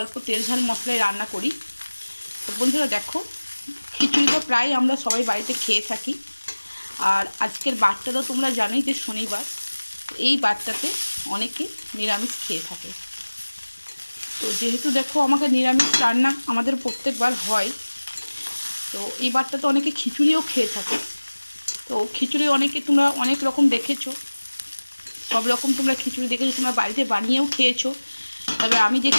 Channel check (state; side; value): inverted; both; correlation -1.00